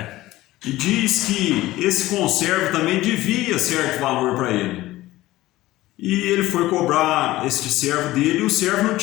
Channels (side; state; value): right; quieter; 17.0 dB